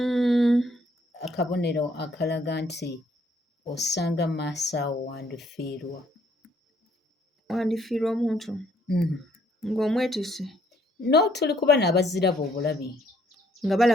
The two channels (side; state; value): both; normal; correlation 0.66